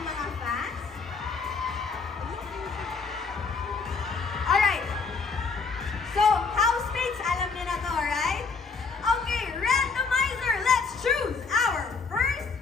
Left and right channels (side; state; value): right; quieter; 4.7 dB